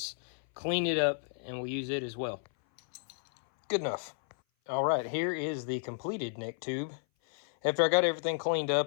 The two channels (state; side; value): silent; right; 56 dB below the other